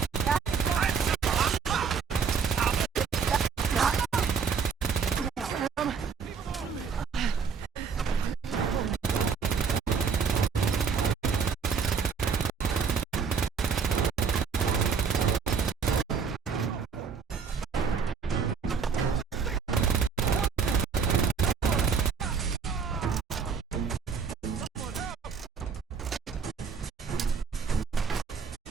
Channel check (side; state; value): left; quieter; 6.0 dB